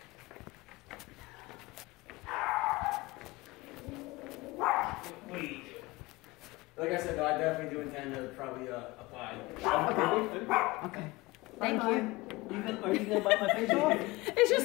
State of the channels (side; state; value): right; quieter; 21.5 dB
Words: Like I said, though, I definitely do intend to probably apply. Okay. Thank you. Are you going to bite my face off? It's